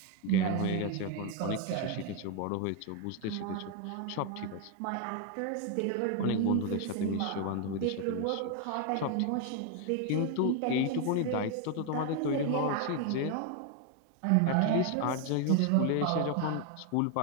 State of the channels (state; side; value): different; both; correlation 0.01